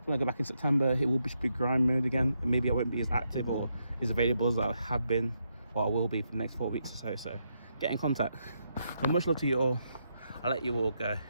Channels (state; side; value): inverted; both; correlation -0.81